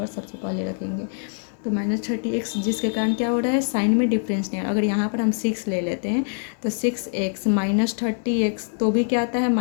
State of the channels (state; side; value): silent; right; 61 dB below the other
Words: सबसे पहले रखेंगे। तो -30x जिसके कारण क्या हो रहा है, साइन में डिफरेंस नहीं है। अगर यहाँ पर हम 6 ले लेते हैं तो 6x -30x तो भी क्या आता है